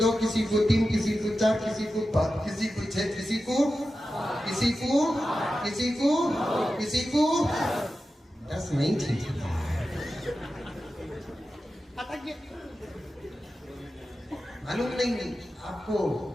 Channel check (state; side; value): normal; both; correlation 0.92